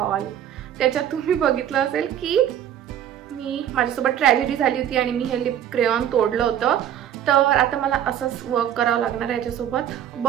त्याच्यात तुम्ही बघितलं असेल की माझ्यासोबत ट्रॅजेडी झाली होती आणि मी हे लिप क्रेयॉन तोडलं होतं. तर आता मला असंच वर्क करावं लागणार आहे याच्यासोबत.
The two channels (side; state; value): left; quieter; 10.5 dB